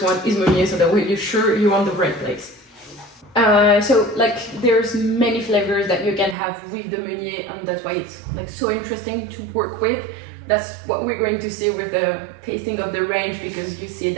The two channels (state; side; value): drops out; left; at 6.4 s